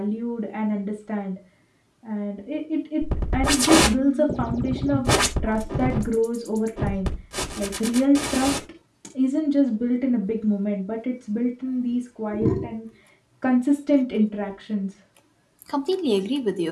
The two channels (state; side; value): identical; both; correlation 1.00